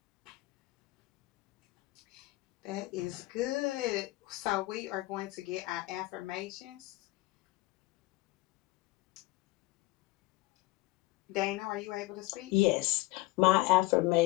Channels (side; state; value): right; quieter; 19.9 dB